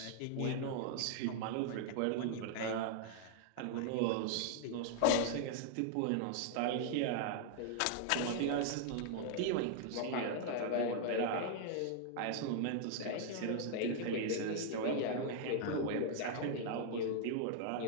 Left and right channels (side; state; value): both; different; correlation -0.01